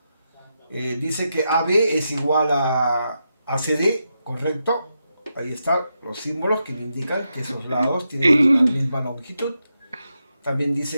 dice que AB es igual a ACD, ¿correcto? Ahí están los símbolos que me indican que esos lados tienen la misma longitud. También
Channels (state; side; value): inverted; both; correlation -0.85